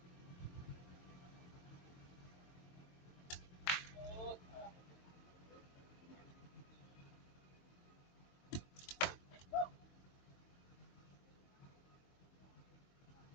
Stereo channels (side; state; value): right; late; 22 ms